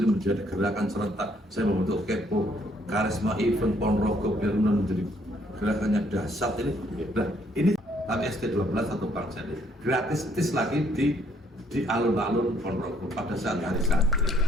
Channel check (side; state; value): both; normal; correlation 0.67